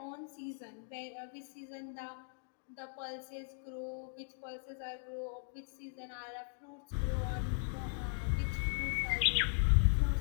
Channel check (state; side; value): silent; right; digital silence